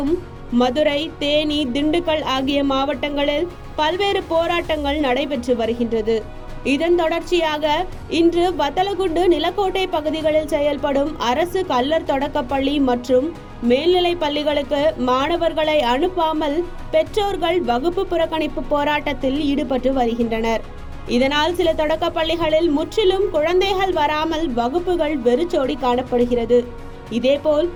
மதுரை, தேனி, திண்டுக்கல் ஆகிய மாவட்டங்களில் பல்வேறு போராட்டங்கள் நடைபெற்று வருகின்றது. இதன் தொடர்ச்சியாக இன்று வத்தலகுண்டு, நிலக்கோட்டை பகுதிகளில் செயல்படும் அரசு கல்லர் தொடக்கப்பள்ளி மற்றும் மேல்நிலை பள்ளிகளுக்கு மாணவர்களை அனுப்பாமல் பெற்றோர்கள் வகுப்பு புறக்கணிப்பு போராட்டத்தில் ஈடுபட்டு வருகின்றனர். இதனால் சில தொடக்க பள்ளிகளில் முற்றிலும் குழந்தைகள் வராமல் வகுப்புகள் வெறிச்சோடி காணப்படுகிறது. இதேபோல்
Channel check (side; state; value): both; identical; correlation 1.00